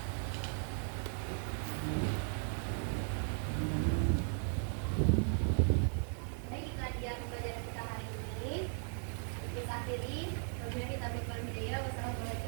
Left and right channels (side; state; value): left; silent; 53 dB below the other